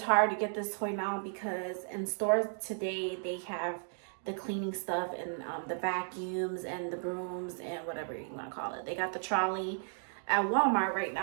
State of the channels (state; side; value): silent; left; digital silence